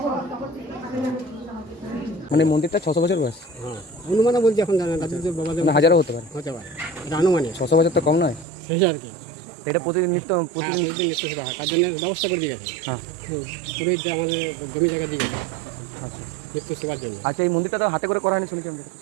মানে মন্দিরটা 600 বছর বয়স। হ্যাঁ, অনুমানে বলছি, এখন জানেন রাজুদের বাবাদের মানে হাজারও হতে পারে। এটা আনুমানিক 600 বছর তো কম নয়, সেই আর কি। এটা প্রতিদিন প্রতিদিন প্রতিদিন নিত্য সেবা হয়, তার জন্য ব্যবস্থা করে দিয়ে গেছে। হ্যাঁ, পুরোহিত যে আমাদের জমি জায়গা দিয়ে গেছে আচ্ছা নিত্য সেবার জন্য। আচ্ছা, এই মন্দিরটা তো হাতে করে করা হয়নি শুনেছি আমি।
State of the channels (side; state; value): left; drops out; at 8.5 s